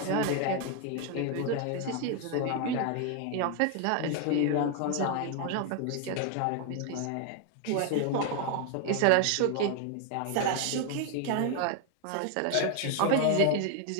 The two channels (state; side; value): different; both; correlation 0.01